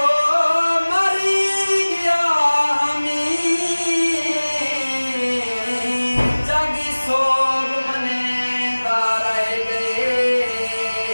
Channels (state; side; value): inverted; both; correlation -1.00